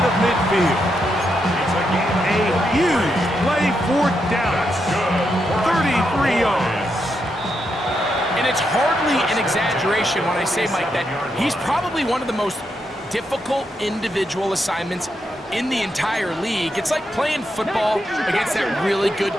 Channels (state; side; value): normal; both; correlation 0.82